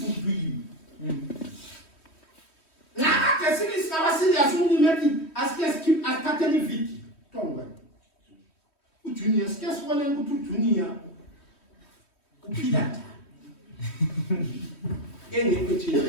to you. Now, the series is our serious only as keep as Catholic victim. Tonga. Junior, scarce one and go to Junior. Upidata. Any picture.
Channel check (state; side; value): late; right; 3.1 ms